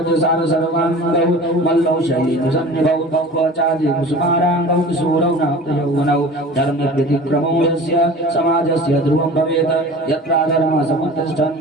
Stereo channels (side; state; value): both; normal; correlation 0.39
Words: सर्वाङ्गौ मल्लौ शैलसन्निभौ क्वचादि कुसुमाराङ्गौ किशोरौ नाप्तयौवनौ धर्मव्यतिक्रमो यस्य समाजस्य ध्रुवं भवेत्